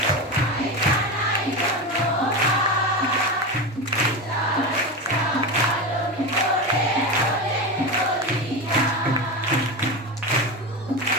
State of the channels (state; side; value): normal; both; correlation 0.20